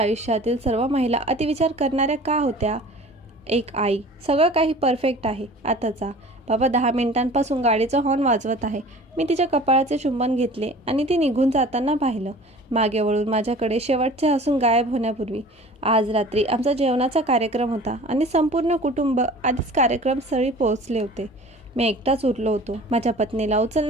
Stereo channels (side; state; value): both; normal; correlation 0.44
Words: सर्व महिला अतिविचार करणाऱ्या का होत्या? एक आई. सगळं काही परफेक्ट आहे. आता जा. बाबा 10 मिनिटांपासून गाडीचा हॉर्न वाजवत आहे. मी तिच्या कपाळाचे चुंबन घेतले आणि ती निघून जाताना पाहिलं. मागे वळून माझ्याकडे शेवटचे हसून गायब होण्यापूर्वी. आज रात्री आमचा जेवणाचा कार्यक्रम होता आणि संपूर्ण कुटुंब आधीच कार्यक्रमस्थळी पोहोचले होते. मी एकटाच उरलो होतो. माझ्या पत्नीला